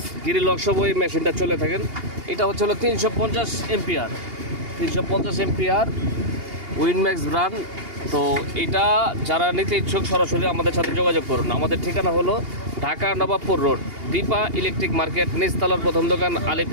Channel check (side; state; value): left; late; 2.8 ms